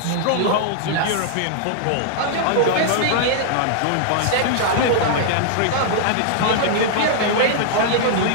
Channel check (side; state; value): both; different; correlation -0.01